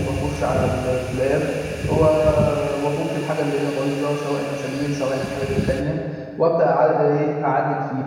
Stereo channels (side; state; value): both; identical; correlation 1.00